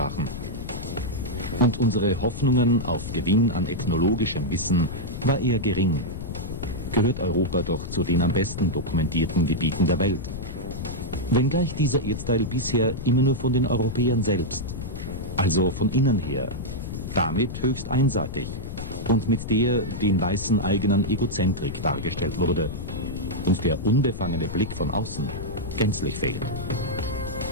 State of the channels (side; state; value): left; noise; rumble, 7 dB below the sound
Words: Und unsere Hoffnungen auf Gewinn an ethnologischem Wissen war eher gering. Gehört Europa doch zu den am besten dokumentierten Gebieten der Welt. Wenngleich dieser Erdteil bisher immer nur von den Europäern selbst, also von innen her, damit höchst einseitig und mit der den Weißen eigenen Egozentrik dargestellt wurde und der unbefangene Blick von außen gänzlich fehlt.